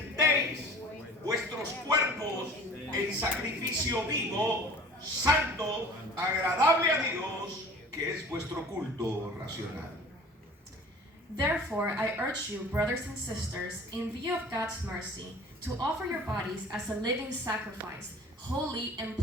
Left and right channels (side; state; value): both; normal; correlation 0.44